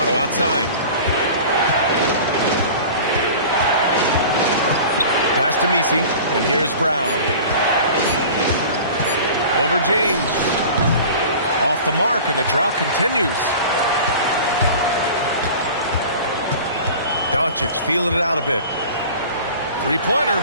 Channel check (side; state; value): both; inverted; correlation -0.40